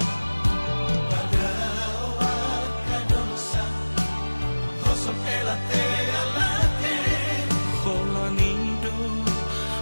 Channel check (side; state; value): both; inverted; correlation -1.00